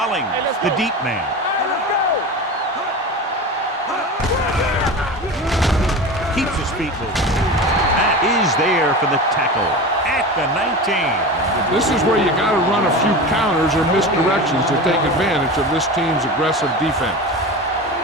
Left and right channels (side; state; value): both; normal; correlation 0.29